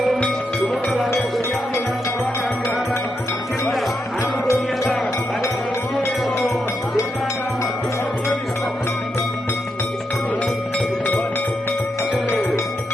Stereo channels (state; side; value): normal; both; correlation 0.83